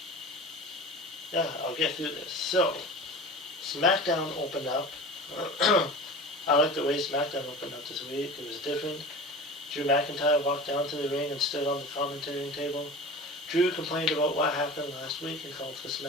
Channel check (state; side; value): normal; both; correlation 0.35